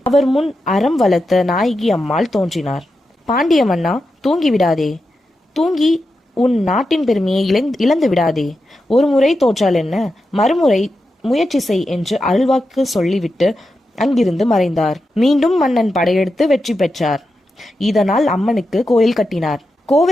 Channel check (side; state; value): both; normal; correlation 0.89